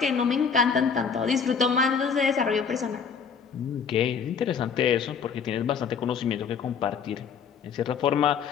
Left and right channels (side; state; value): right; quieter; 6.4 dB